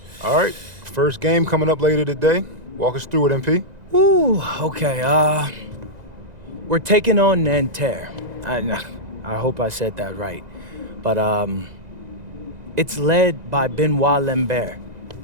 All right, first game coming up later today. Walk us through it, MP. Ooh, okay, we're taking on Nanterre. I hope I said that right. But, it's led by Benoit Lambert,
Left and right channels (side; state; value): left; late; 2.0 ms